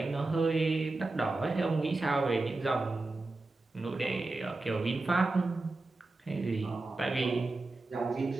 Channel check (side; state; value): left; quieter; 3.2 dB